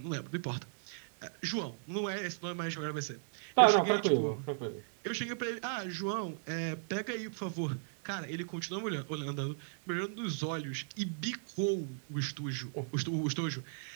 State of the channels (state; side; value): silent; left; digital silence